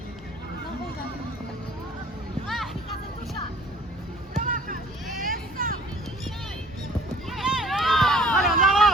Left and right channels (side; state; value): both; normal; correlation 0.52